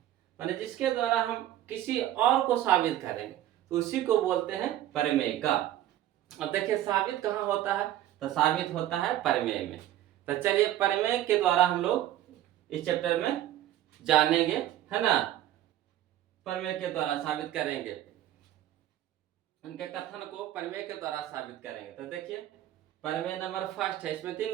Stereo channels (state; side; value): quieter; left; 12.8 dB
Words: माने जिसके द्वारा हम किसी और को साबित करेंगे तो उसी को बोलते हैं प्रमेयिका। अब देखिए साबित कहाँ होता है? तो साबित होता है प्रमेय में। तो चलिए प्रमेय के द्वारा हम लोग इस चैप्टर में जानेंगे, है ना। प्रमेय के द्वारा साबित करेंगे, उनके कथन को प्रमेय के द्वारा साबित करेंगे। तो देखिए प्रमेय नंबर फर्स्ट है, इसमें 3